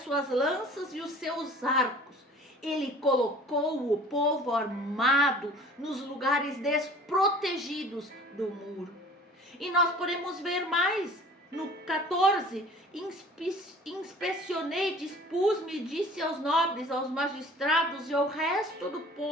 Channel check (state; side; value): normal; both; correlation 0.47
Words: lanças e os seus arcos. Ele colocou o povo armado nos lugares desprotegidos do muro. E nós podemos ver mais. No 14, inspecionei, dispus-me, disse aos nobres, aos magistrados e ao resto do